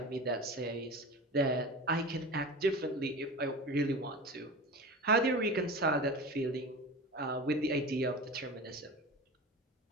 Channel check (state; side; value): normal; both; correlation 0.32